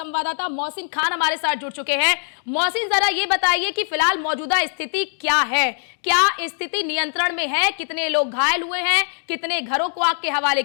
मोहसिन खान हमारे साथ जुड़ चुके हैं। मोहसिन, जरा ये बताइए कि फिलहाल मौजूदा स्थिति क्या है, क्या स्थिति नियंत्रण में है, कितने लोग घायल हुए हैं, कितने घरों को आग के हवाले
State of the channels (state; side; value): silent; right; digital silence